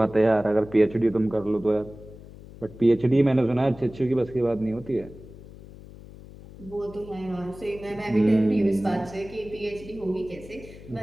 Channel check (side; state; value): left; noise; hum, 17 dB below the sound